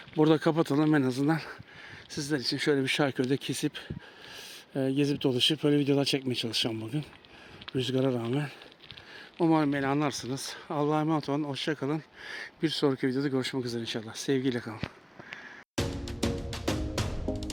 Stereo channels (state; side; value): identical; both; correlation 1.00